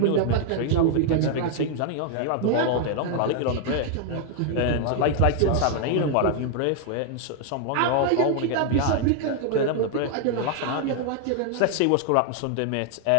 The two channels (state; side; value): different; both; correlation 0.00